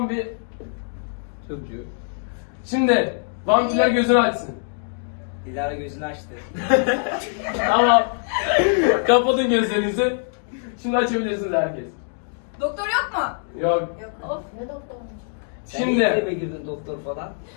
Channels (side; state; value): right; silent; digital silence